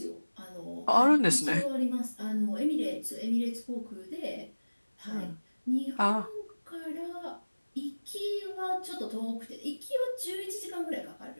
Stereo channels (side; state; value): both; inverted; correlation -1.00